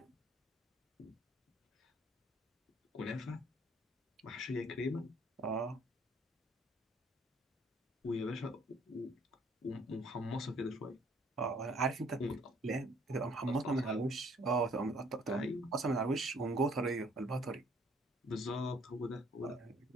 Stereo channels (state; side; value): normal; both; correlation 0.61